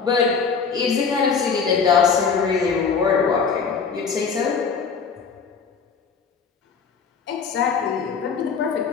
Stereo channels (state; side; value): quieter; right; 5.7 dB